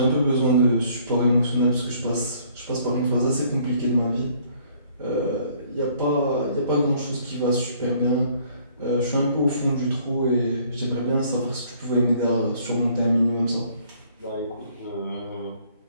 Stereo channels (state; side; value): inverted; both; correlation -0.61